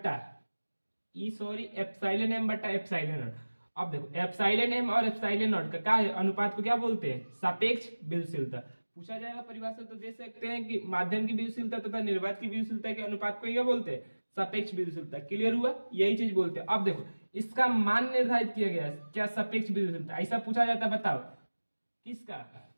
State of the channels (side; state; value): both; inverted; correlation -1.00